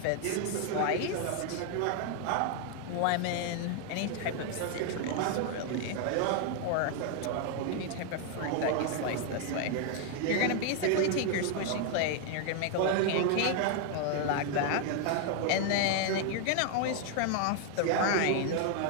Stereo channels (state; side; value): different; both; correlation 0.00